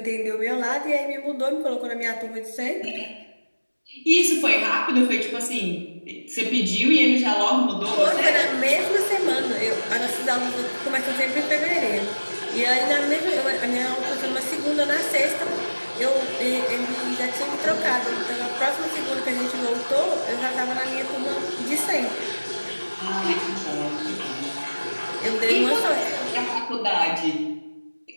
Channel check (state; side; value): inverted; both; correlation -1.00